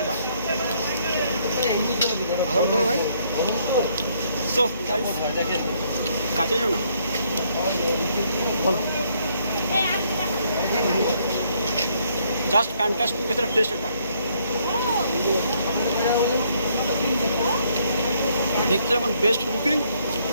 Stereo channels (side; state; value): both; inverted; correlation -0.69